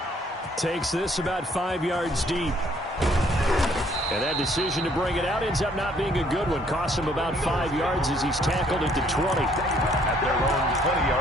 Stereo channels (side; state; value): both; normal; correlation 0.64